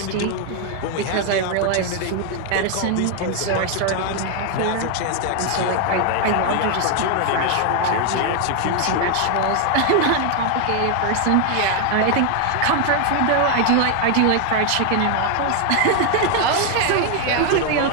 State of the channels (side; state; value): both; different; correlation 0.01